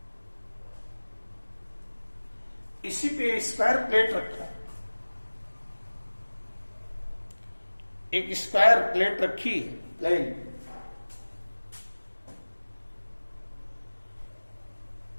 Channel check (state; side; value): inverted; both; correlation -1.00